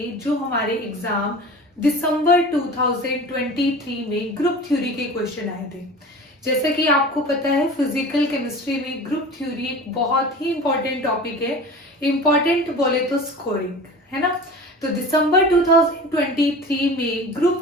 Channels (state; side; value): normal; both; correlation 0.37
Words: जो हमारे एग्जाम दिसंबर 2023 में ग्रुप थ्योरी के क्वेश्चन आए थे। जैसा कि आपको पता है, फिजिकल केमिस्ट्री में ग्रुप थ्योरी एक बहुत ही इंपॉर्टेंट टॉपिक है। इंपॉर्टेंट बोले तो स्कोरिंग, है ना। तो दिसंबर 2023 में